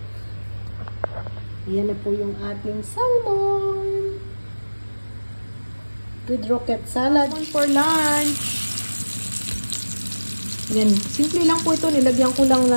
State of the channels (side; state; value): both; inverted; correlation -1.00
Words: Yan na po yung ating salmon. With rocket salad. For lunch. Yan. Simple lang po ito. Nilagyan ko lang